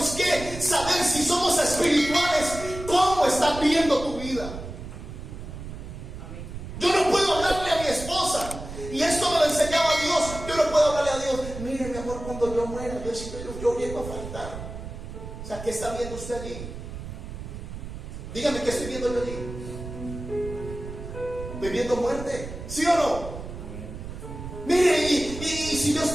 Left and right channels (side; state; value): right; noise; rumble, 10 dB below the sound